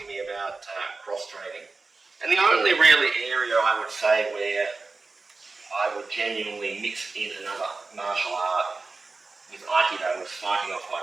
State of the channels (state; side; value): quieter; left; 3.8 dB